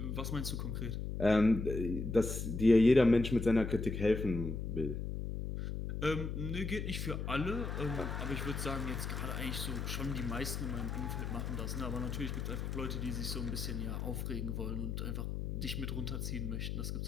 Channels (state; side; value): noise; left; hum, 3 dB below the sound